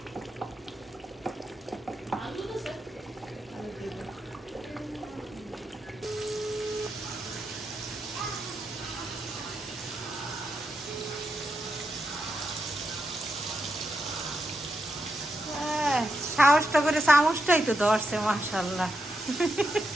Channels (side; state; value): both; normal; correlation 0.85